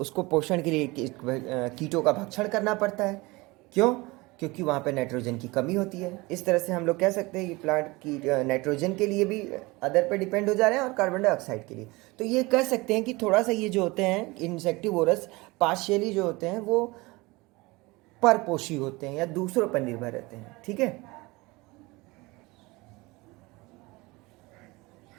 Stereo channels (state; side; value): quieter; left; 23.1 dB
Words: पोषण के लिए कीटों का भक्षण करना पड़ता है। क्यों? क्योंकि वहाँ पे नाइट्रोजन की कमी होती है। इस तरह से हम लोग कह सकते हैं कि प्लांट की नाइट्रोजन के लिए भी अदर पे डिपेंड हो जा रहे हैं और कार्बन डाइऑक्साइड के लिए। तो ये कह सकते हैं कि थोड़ा सा ये जो होते हैं इंसेक्टिवोरस पार्शियली जो होते हैं वो परपोषी होते हैं या दूसरों पर निर्भर रहते हैं। ठीक है